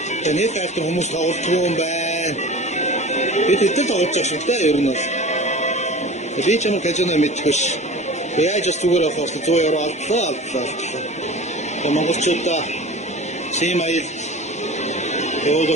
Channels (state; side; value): normal; both; correlation 0.37